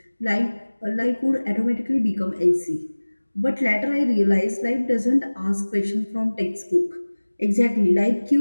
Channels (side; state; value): both; inverted; correlation -1.00